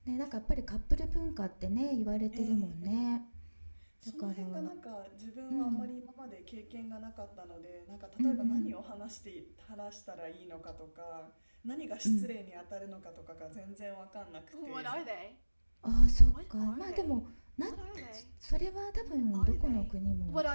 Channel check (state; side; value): inverted; both; correlation -1.00